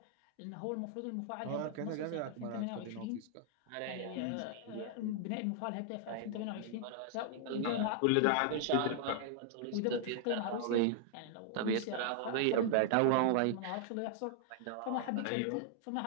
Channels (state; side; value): different; both; correlation 0.00